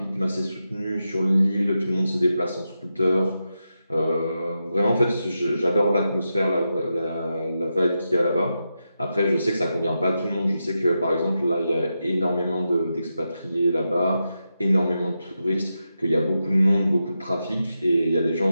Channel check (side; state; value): both; inverted; correlation -0.88